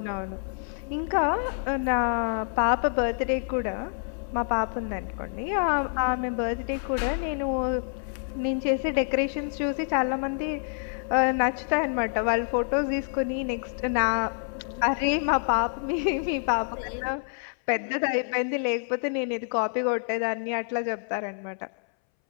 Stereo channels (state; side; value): silent; right; 60 dB below the other